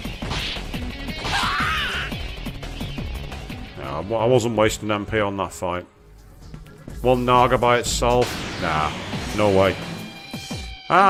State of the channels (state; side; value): identical; both; correlation 1.00